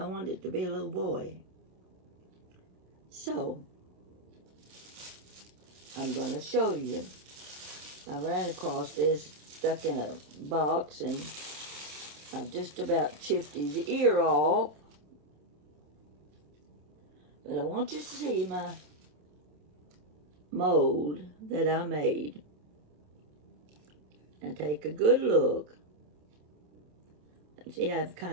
wanted it to be a little boy. So, I'm going to show you. I ran across this, stuck in a box, and I've just about chipped his ear off. But I want you to see my mold that I made. Now take a good look. See, I've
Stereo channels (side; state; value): left; late; 28 ms